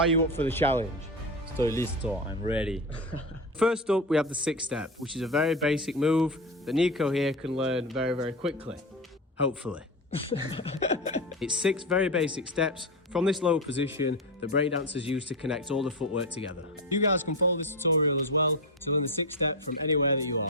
you up for the challenge? Estoy listo, I'm ready. First up, we have the 6-step, which is a very basic move that Nico here can learn very, very quickly, hopefully. It's 6 very basic steps from this low position that breakdancers use to connect all the footwork together. You guys can follow this tutorial as well to learn the 6-step from anywhere that you are.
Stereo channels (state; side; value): normal; both; correlation 0.18